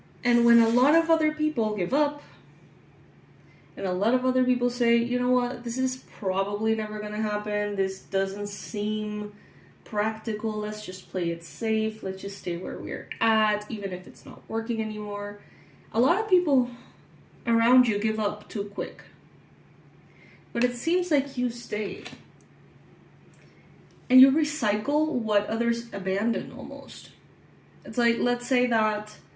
And when a lot of other people give up, and a lot of other people say, you know what, this is probably never gonna happen, this doesn't seem practical, let's just play it safe, let's just stay where we're at, even if it's not working anymore. A lot of people around you give up too quick. But it seems like you stay. And you recycle what others abandon almost. It's like, let's say that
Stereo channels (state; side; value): identical; both; correlation 1.00